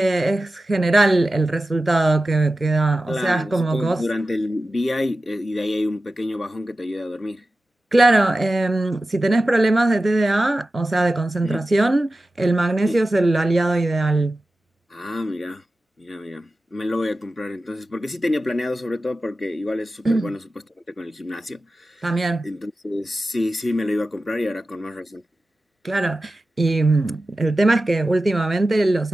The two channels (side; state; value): both; normal; correlation 0.94